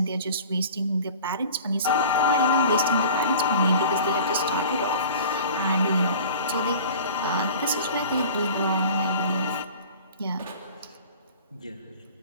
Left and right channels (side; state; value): both; inverted; correlation -0.41